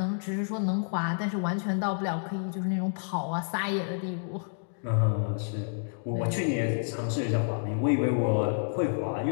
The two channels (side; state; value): right; silent; digital silence